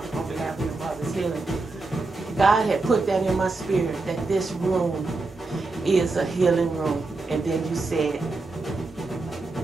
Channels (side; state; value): left; quieter; 3.5 dB